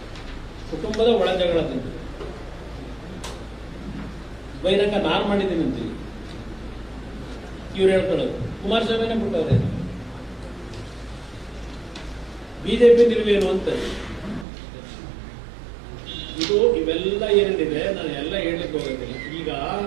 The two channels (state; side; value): drops out; left; at 14.5 s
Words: ಕುಟುಂಬದ ಒಳಜಗಳದಿಂದ ಬಹಿರಂಗ ನಾನು ಮಾಡಿದ್ದೀನಿ ಅಂತೀವಿ ಇವ್ರು ಹೇಳ್ಕೊಳ್ಳೋದು. ಕುಮಾರಸ್ವಾಮಿನೇ ಬಿಟ್ಟವ್ರೆ. ಬಿಜೆಪಿ ನಿಲುವೇನು ಅಂತ ಇದು ಇವೆಲ್ಲ ಏನೇನಿದೆ ನಾನು ಎಲ್ಲ ಹೇಳಲಿಕ್ಕೆ ಹೋಗೋದಿಲ್ಲ. ಈಗ